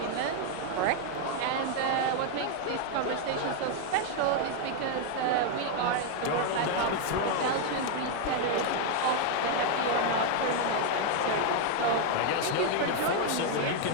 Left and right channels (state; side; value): different; both; correlation 0.00